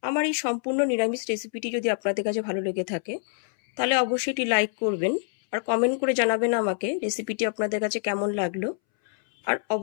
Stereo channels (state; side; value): silent; right; 61 dB below the other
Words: আমার এই সম্পূর্ণ নিরামিষ রেসিপিটি যদি আপনাদের কাছে ভালো লেগে থাকে তাহলে অবশ্যই এটি লাইক করবেন আর কমেন্ট করে জানাবেন আমাকে রেসিপিটি আপনাদের কাছে কেমন লাগলো। আর